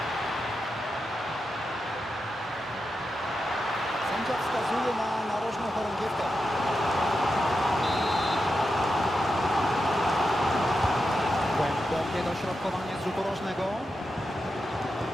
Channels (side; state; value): both; normal; correlation 0.88